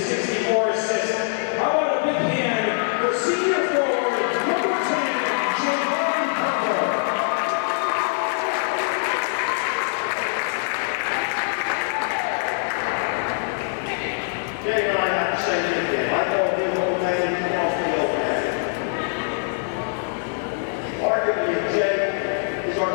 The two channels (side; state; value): right; silent; digital silence